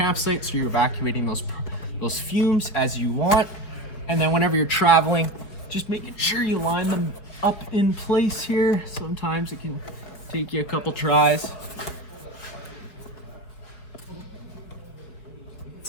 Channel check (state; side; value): late; right; 4.9 ms